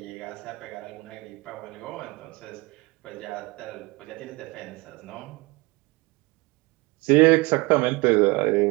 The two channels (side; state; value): left; quieter; 24.4 dB